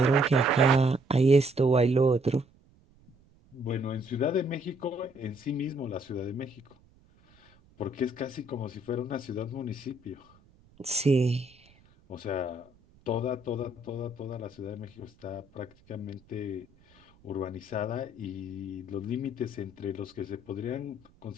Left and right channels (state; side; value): noise; right; rumble, 29 dB below the sound